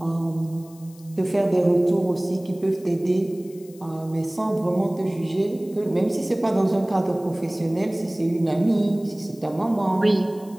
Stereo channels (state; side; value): noise; left; hiss, 25 dB below the sound